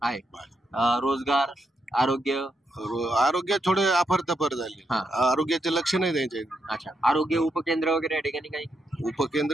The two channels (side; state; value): both; normal; correlation 0.82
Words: रोजगार, आरोग्य थोडे अफरतफर झाले. आरोग्याचे लक्ष नाही द्यायचे. अच्छा, आरोग्य उपकेंद्र वगैरे या ठिकाणी काही?